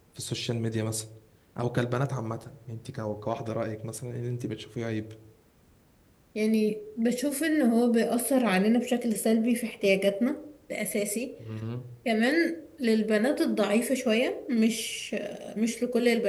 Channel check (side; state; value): both; identical; correlation 1.00